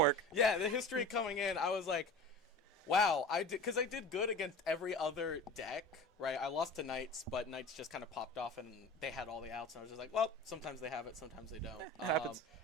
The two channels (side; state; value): both; normal; correlation 0.36